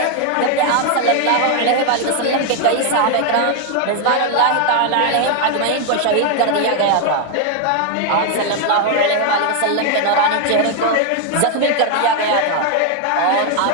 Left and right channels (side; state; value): both; different; correlation 0.01